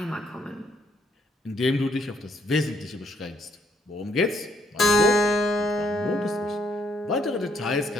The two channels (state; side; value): normal; both; correlation 0.70